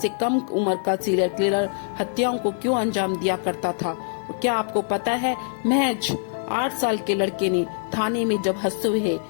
कम उम्र का सीरियल किलर हत्याओं को क्यों अंजाम दिया करता था? और क्या आपको पता है महज 8 साल के लड़के ने थाने में जब हंसते हुए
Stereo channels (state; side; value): silent; right; 63 dB below the other